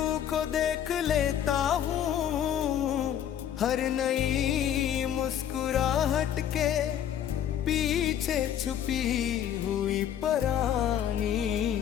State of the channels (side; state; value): right; quieter; 9.9 dB